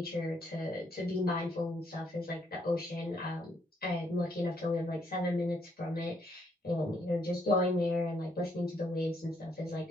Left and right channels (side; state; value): both; normal; correlation 0.72